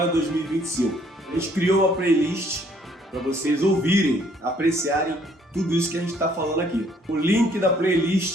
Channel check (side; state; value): both; normal; correlation 0.63